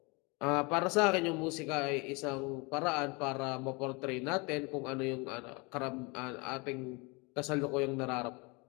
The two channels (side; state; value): right; quieter; 28.4 dB